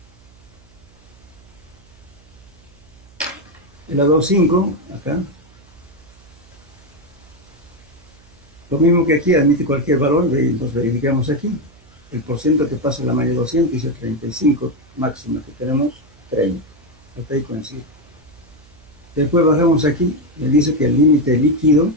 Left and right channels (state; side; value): noise; right; hum, 27 dB below the sound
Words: El a 2,5, acá, lo mismo que aquí, admite cualquier valor, nos verificamos aquí. El porcentaje que pasa en la malla 200 dice 35 máxima, que tenemos 30. Hasta ahí coincide. Después bajamos aquí, me dice que el límite líquido